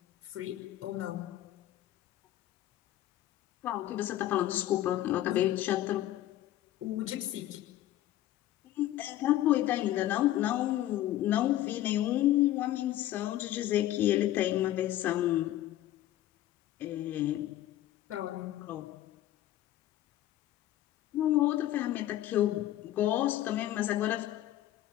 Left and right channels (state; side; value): quieter; right; 13.9 dB